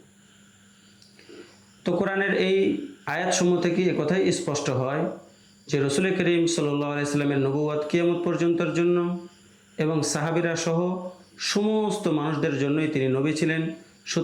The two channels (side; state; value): both; identical; correlation 1.00